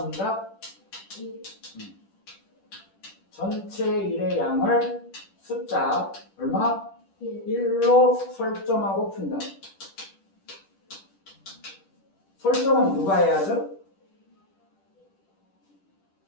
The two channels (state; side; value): late; right; 10 ms